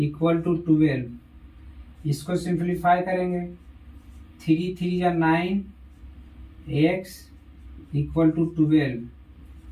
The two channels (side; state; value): both; identical; correlation 1.00